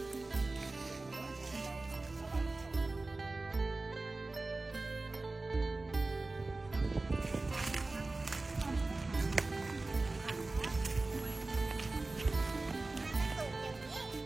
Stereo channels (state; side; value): quieter; left; 3.2 dB